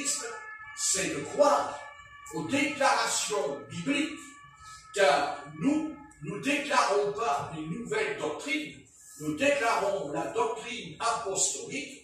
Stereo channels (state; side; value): identical; both; correlation 1.00